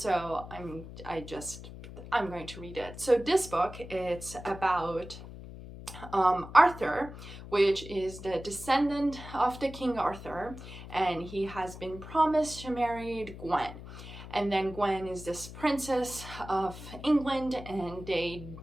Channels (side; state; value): left; noise; hum, 13 dB below the sound